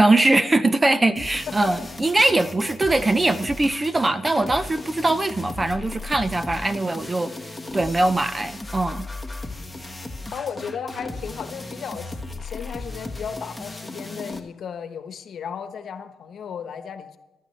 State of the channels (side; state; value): both; normal; correlation 0.93